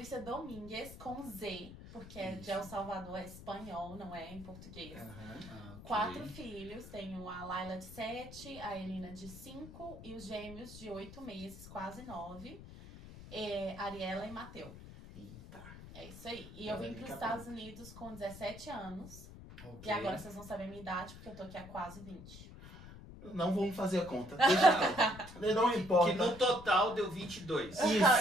Domingues, com Z, porque é de Isso. El Salvador, é espanhol, não é em português. Aham. Ah, ok. 4 filhos, tenho a Laila de 7, a Elina de 5 e os gêmeos de 8 meses, quase 9, Ariela e Mateu. Eita. É isso aí. E eu vim para os Estados Unidos com 17 anos. Ok. E agora vocês vão saber a minha idade, porque eu tô aqui há quase 20. Não vamos fazer a conta. Deixa quieto. Não importa. Que no total deu 22.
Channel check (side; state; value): left; noise; rumble, 15 dB below the sound